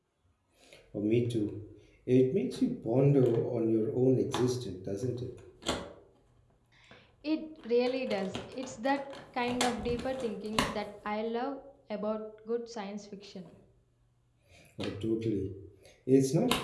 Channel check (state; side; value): identical; both; correlation 1.00